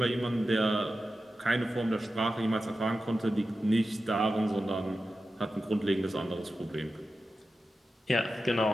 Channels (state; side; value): normal; both; correlation 0.92